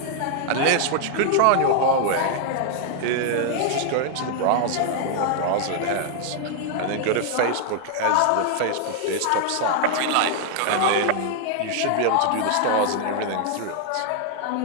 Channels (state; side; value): different; both; correlation 0.00